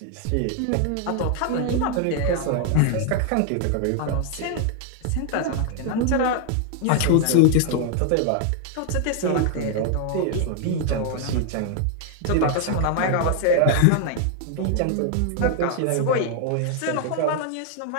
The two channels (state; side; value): different; both; correlation 0.00